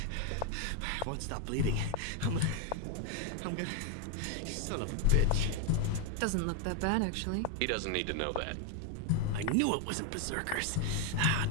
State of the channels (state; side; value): different; both; correlation 0.01